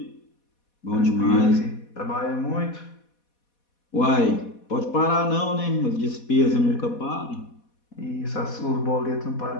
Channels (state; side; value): late; right; 4.1 ms